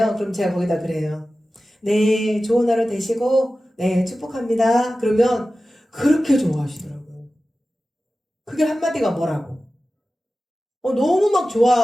그럼 제가 거기다 그래요. 네, 좋은 하루 되시고 네, 축복합니다. 그러면 그렇게 좋아하시더라고요. 그게 한마디가 뭐라고? 너무 막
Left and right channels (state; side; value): normal; both; correlation 0.95